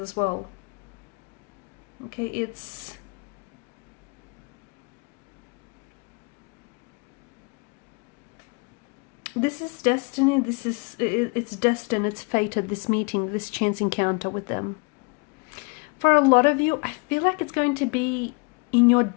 well. Okay, this is destiny, it's destined, it's fated, this meeting, this chance encounter with them. For a lot of you, I feel like it's going to be in your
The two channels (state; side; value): quieter; right; 31.9 dB